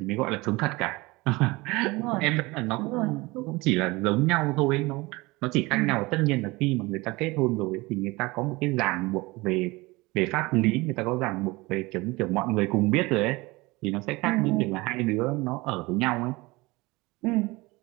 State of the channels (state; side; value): quieter; left; 22.7 dB